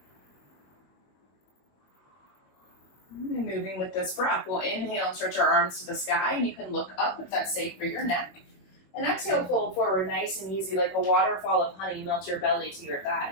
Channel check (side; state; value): right; late; 22 ms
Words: And moving with this breath, we'll inhale and stretch our arms to the sky, and you can look up if that's safe for your neck. And exhale, fold forward nice and easy, like a waterfall of honey. Melt your belly to your